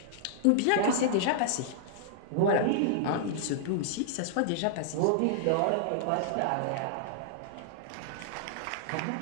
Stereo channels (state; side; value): different; both; correlation -0.01